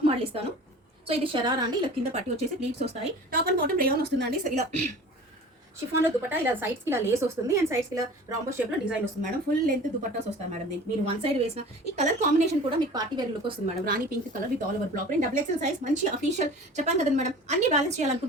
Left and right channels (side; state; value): both; normal; correlation 0.41